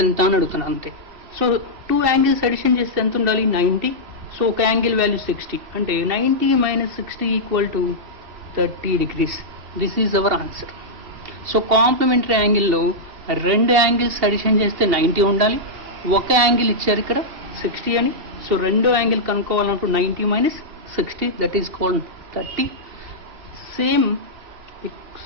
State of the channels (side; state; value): left; late; 2.7 ms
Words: ఎంత అని అడుగుతున్నా అంతే. సో టూ యాంగిల్స్ అడిషన్ చేస్తే ఎంత ఉండాలి? 90. సో ఒక యాంగిల్ వాల్యూ 60 అంటే 90 - 60 = 30 degrees. This is our answer. So complementary యాంగిల్లో రెండు యాంగిల్స్ అడిషన్ చేస్తే 90 ఉండాలి, ఒక యాంగిల్ ఇచ్చారు ఇక్కడ 60 అని. సో రెండో యాంగిల్ కనుక్కోవాలంటూ 90 - 60 that is called 30. Same